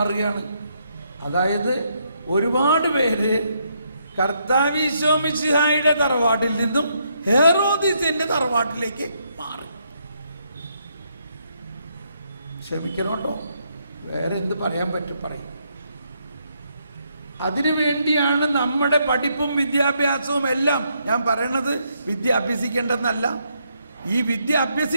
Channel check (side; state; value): both; inverted; correlation -0.75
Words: അതായത് ഒരുപാട് പേര് കർത്താവ് ഈശോ മിശിഹായുടെ തറവാട്ടിൽ നിന്നും ഹെറോദിസിന്റെ തറവാട്ടിലേക്ക് മാറി. ക്ഷമിക്കണം കേട്ടോ, വേറെ എന്ത് പറയാൻ പറ്റും? പറയും. അതിനു വേണ്ടിയാണ് നമ്മുടെ പഠിപ്പും വിദ്യാഭ്യാസവും എല്ലാം. ഞാൻ പറയണത് വിദ്യ അഭ്യസിക്കേണ്ടെന്നല്ല. ഈ വിദ്യ